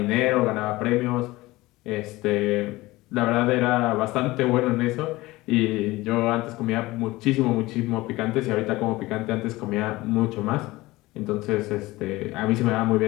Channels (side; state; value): right; quieter; 19.6 dB